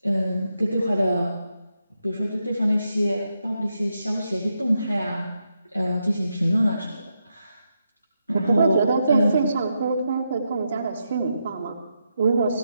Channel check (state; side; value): inverted; both; correlation -0.84